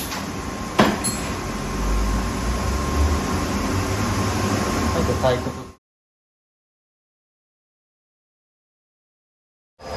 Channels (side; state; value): both; identical; correlation 1.00